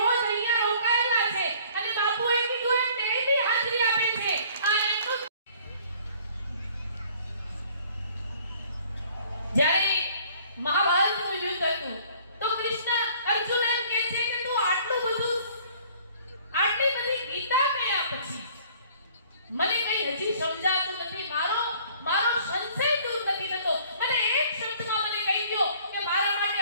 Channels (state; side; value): inverted; both; correlation -0.55